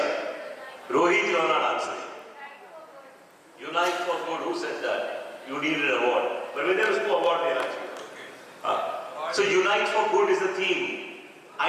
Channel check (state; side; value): identical; both; correlation 1.00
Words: Rohit, you are not answering. Unite for Good, who said that? You need an award. But when there is no award, they are. So Unite for Good is the theme.